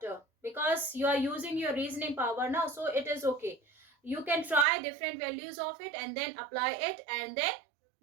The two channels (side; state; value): left; drops out; at 4.7 s